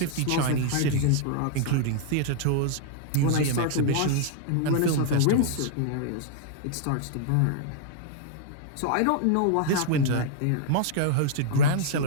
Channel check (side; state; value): both; different; correlation -0.01